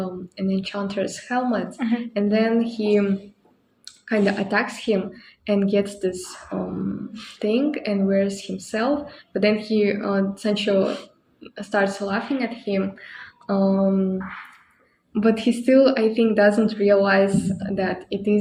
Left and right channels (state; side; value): identical; both; correlation 1.00